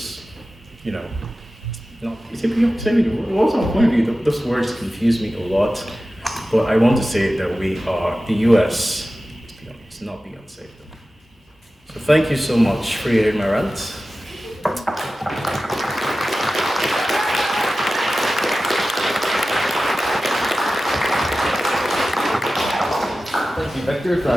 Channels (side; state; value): both; normal; correlation 0.95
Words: what's our point of view? Those words confuse me a lot, but I want to say that the US is not Beyonce. So thank you so much for hearing my rant. Thank you, Victor, for